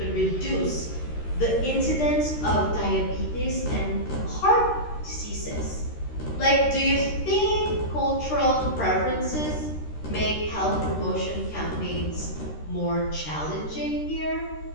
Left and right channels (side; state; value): right; late; 13 ms